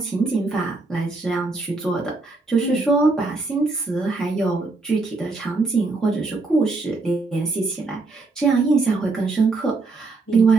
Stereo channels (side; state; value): left; quieter; 3.6 dB